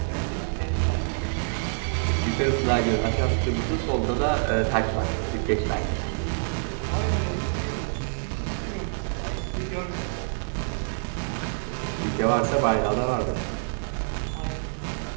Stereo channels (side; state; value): left; silent; digital silence